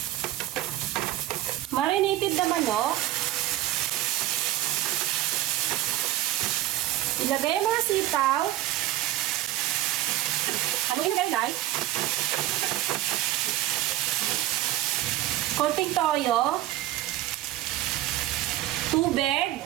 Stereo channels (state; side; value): quieter; left; 14.4 dB